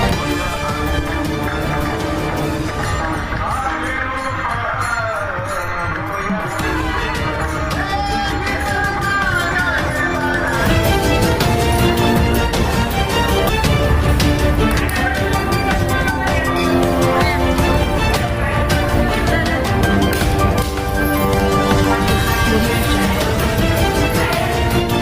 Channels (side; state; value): both; identical; correlation 1.00